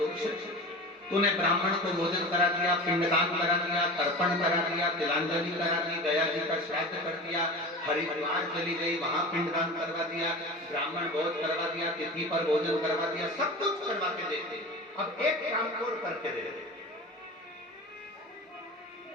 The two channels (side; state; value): both; normal; correlation 0.32